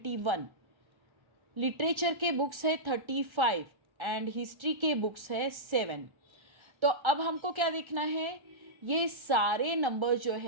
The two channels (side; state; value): left; late; 1.4 ms